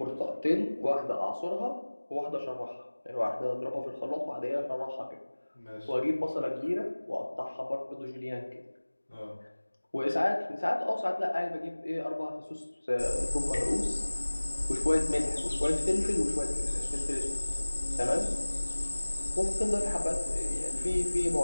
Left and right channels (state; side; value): inverted; both; correlation -1.00